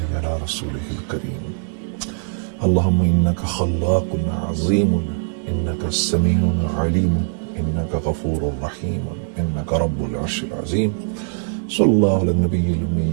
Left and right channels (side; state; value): left; silent; digital silence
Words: على رسوله الكريم اللهم إنك خلاق عظيم إنك السميع العليم إنك غفور رحيم إنك رب العرش العظيم صلى الله على النبي